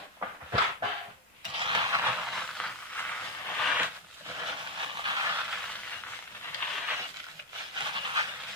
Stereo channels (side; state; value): both; normal; correlation 0.07